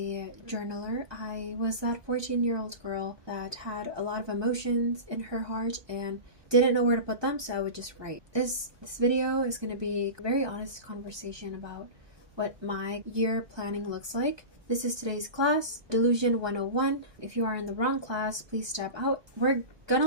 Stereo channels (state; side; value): late; left; 1.2 ms